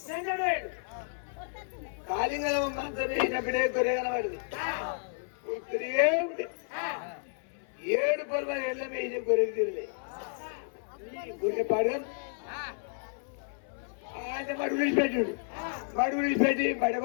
కాలింగల మంత్రం వేసినప్పుడే గొర్రె కనబడింది. 7 పొలమని ఎల్లం వేసిన గొర్రెకి తిరలే గొర్రె పాడు ఆయన మడుగు విడిచిపెట్టి బడ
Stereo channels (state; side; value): silent; right; 55 dB below the other